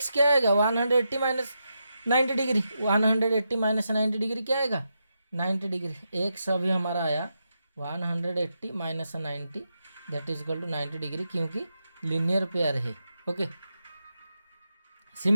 क्या आएगा 180 माइनस 90 डिग्री, 180 माइनस 90 डिग्री क्या आएगा 90 डिग्री। x अभी हमारा आया 180 minus 90 that is equal to 90 degree, क्योंकि लीनियर पेयर है। ओके,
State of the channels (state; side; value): inverted; both; correlation -0.85